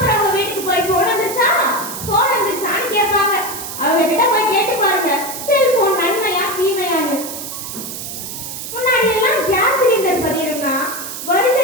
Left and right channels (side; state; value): right; noise; hiss, 8 dB below the sound